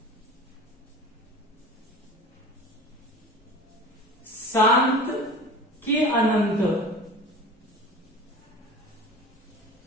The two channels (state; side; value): normal; both; correlation 0.37